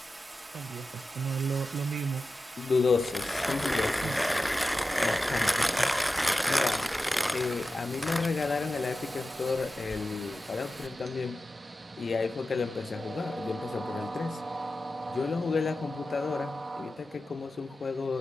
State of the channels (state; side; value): normal; both; correlation 0.93